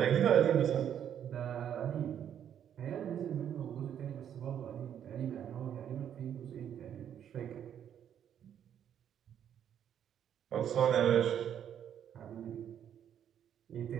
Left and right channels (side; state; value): left; quieter; 9.4 dB